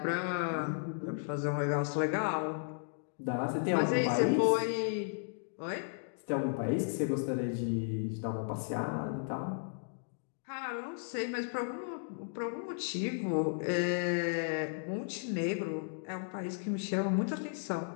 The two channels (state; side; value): silent; right; digital silence